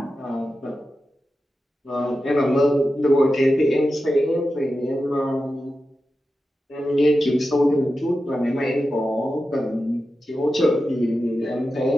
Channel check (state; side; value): normal; both; correlation 0.92